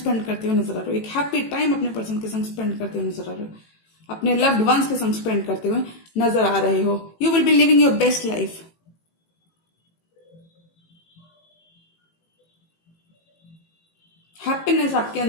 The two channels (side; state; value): right; late; 18 ms